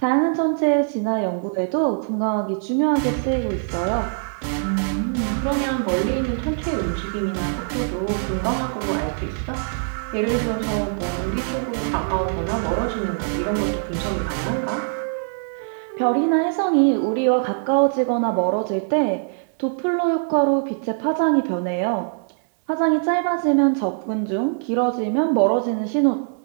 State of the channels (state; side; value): silent; left; 64 dB below the other